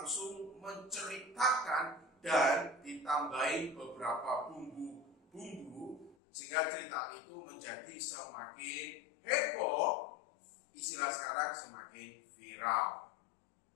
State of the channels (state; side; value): drops out; right; at 6.2 s